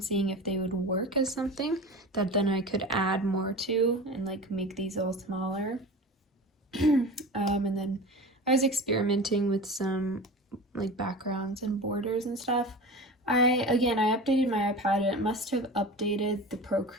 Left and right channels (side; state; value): both; normal; correlation 0.32